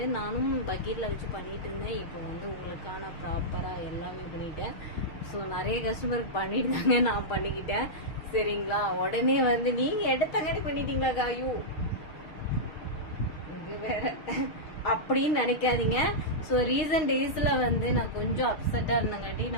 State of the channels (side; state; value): right; late; 6.4 ms